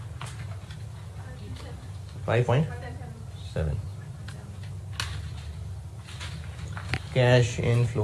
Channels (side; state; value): both; identical; correlation 1.00